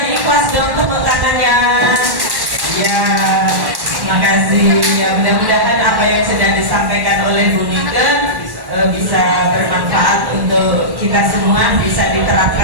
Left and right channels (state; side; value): late; left; 1.1 ms